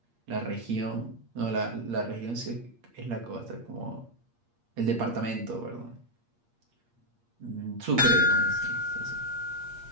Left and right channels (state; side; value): late; left; 8.5 ms